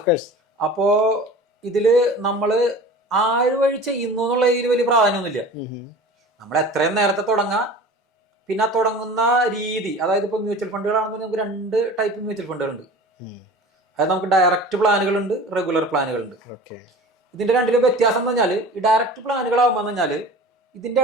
അപ്പോ ഇതില് നമ്മള് ആര് വഴി ചെയ്യുന്നു എന്നുള്ള ഇതിൽ വലിയ പ്രാധാന്യമൊന്നുമില്ല. നമ്മൾ എത്രയും നേരത്തെ തുടങ്ങാം. പിന്നെ തുടങ്ങുന്ന രീതി, അതായത് ഇപ്പൊ മ്യൂച്വൽ ഫണ്ടുകളാണെന്ന് നമുക്ക് 2 ടൈപ്പ് മ്യൂച്വൽ ഫണ്ടുകളുണ്ട്. അതായത് നമുക്ക് ഡയറക്റ്റ് പ്ലാനുകളുണ്ട്, റെഗുലർ പ്ലാനുകളുണ്ട്. ഇതിന്റെ രണ്ടിലും വ്യത്യാസം എന്ന് പറഞ്ഞാൽ, ഈ ഡയറക്റ്റ് പ്ലാനുകളാകുമ്പോൾ എന്ന് പറഞ്ഞാൽ ഇതിന്റെ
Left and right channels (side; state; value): both; normal; correlation 0.39